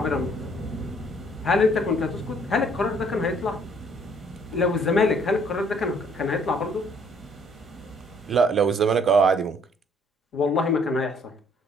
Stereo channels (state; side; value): normal; both; correlation 0.62